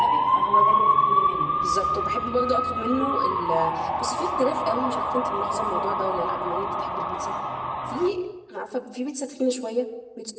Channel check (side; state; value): both; identical; correlation 1.00